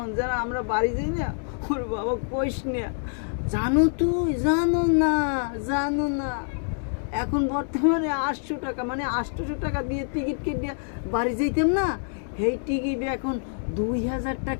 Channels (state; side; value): silent; right; digital silence